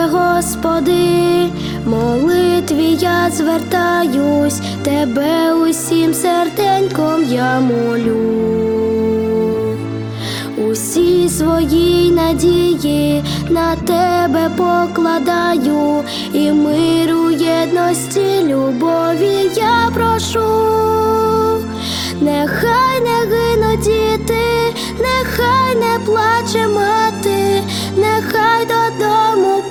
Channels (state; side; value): identical; both; correlation 1.00